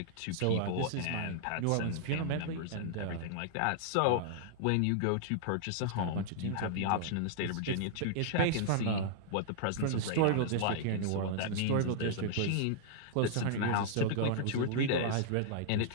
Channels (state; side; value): different; both; correlation -0.01